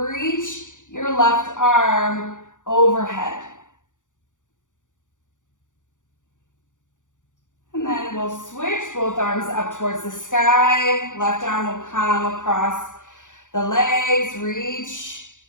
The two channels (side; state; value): right; late; 0.86 ms